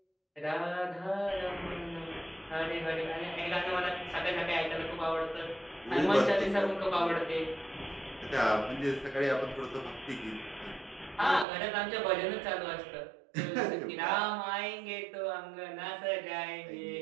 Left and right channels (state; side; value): drops out; left; at 11.5 s